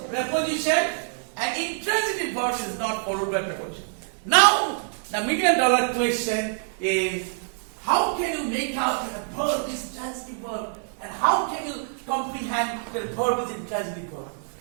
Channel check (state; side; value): silent; left; 61 dB below the other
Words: preposition and intransitive verb is not followed by preposition. Now, the $1 million question is, how can you make out that a verb is transitive verb and how can you comprehend that a verb is intransitive verb?